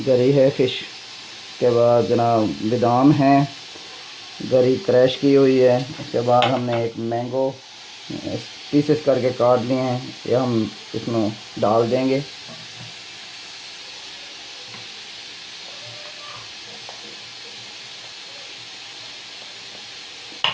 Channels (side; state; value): both; identical; correlation 1.00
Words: है फिश, के बाद जनाब बादाम है, गरी क्रैश की हुई है। उसके बाद हमने एक मैंगो पीसेस करके काट लिए हैं, ये हम इसमें डाल देंगे।